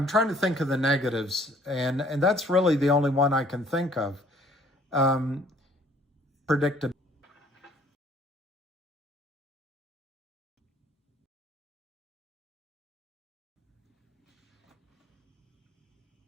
trying to think of the negatives, and that's really the only one I can think of. Predictability.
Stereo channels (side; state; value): both; normal; correlation 0.58